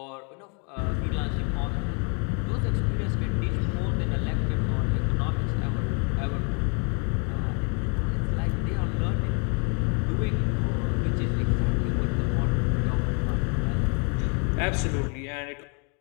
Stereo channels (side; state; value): right; quieter; 36.7 dB